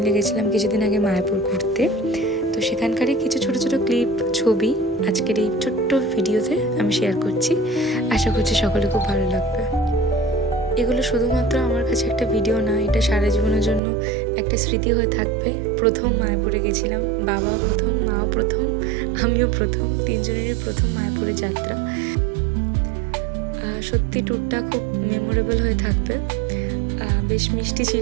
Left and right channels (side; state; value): left; drops out; at 13.8 s